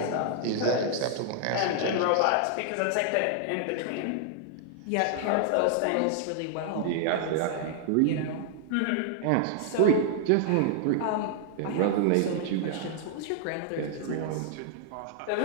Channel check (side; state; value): both; different; correlation 0.00